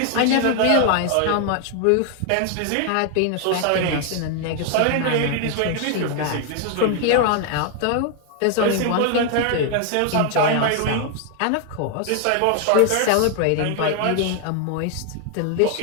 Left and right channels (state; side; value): different; both; correlation 0.00